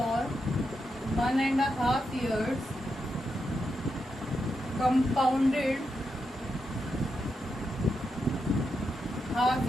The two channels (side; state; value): both; normal; correlation 0.85